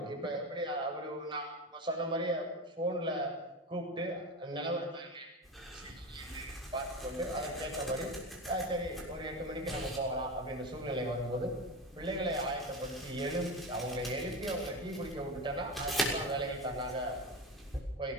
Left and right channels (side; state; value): both; normal; correlation 0.23